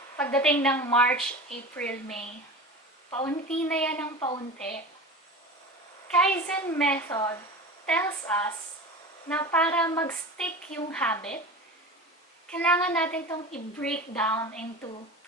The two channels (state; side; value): normal; both; correlation 0.31